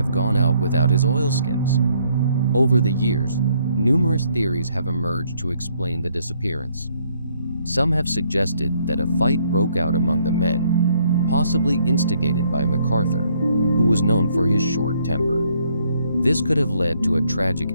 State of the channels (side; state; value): both; inverted; correlation -0.68